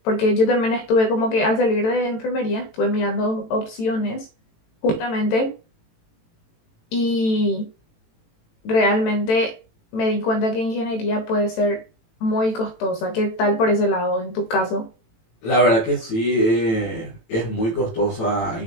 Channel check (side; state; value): right; late; 18 ms